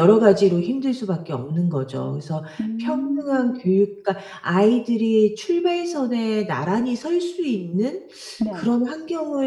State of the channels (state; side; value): identical; both; correlation 1.00